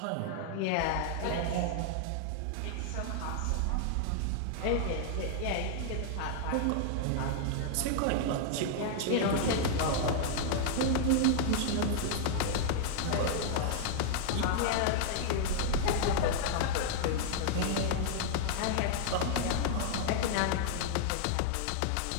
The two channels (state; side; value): different; both; correlation -0.01